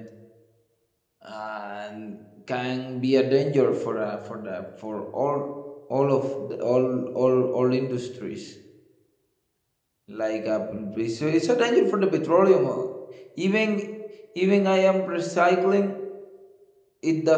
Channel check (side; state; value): both; identical; correlation 1.00